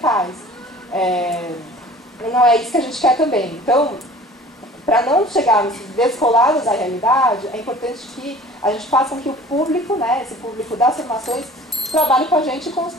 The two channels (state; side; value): normal; both; correlation 0.46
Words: Não é isso que a gente quer também. Então, para não chegarmos descolados da realidade, é importante que a gente faça com que o público, né, esse público das formações, trabalhe com a gente e